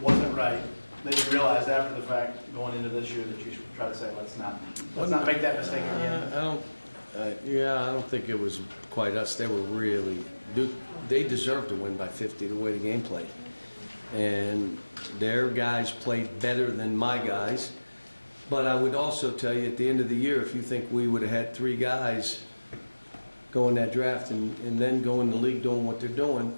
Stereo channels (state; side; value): inverted; both; correlation -1.00